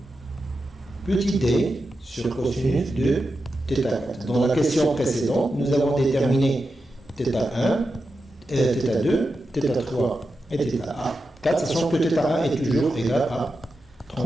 petit d sur cosinus de θ4. Dans la question précédente, nous avons déterminé θ1, θ2, θ3 et θ4, sachant que θ1 est toujours égal à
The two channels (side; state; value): both; normal; correlation 0.89